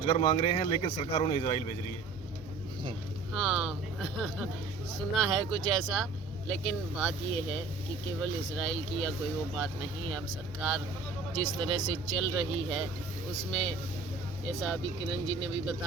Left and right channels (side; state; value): left; quieter; 4.1 dB